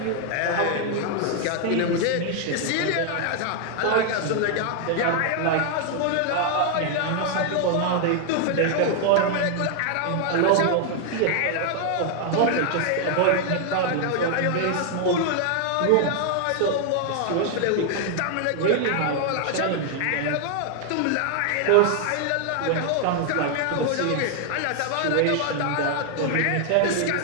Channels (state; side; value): different; both; correlation 0.00